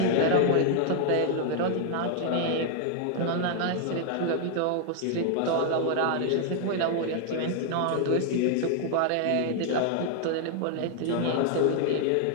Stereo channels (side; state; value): both; different; correlation 0.00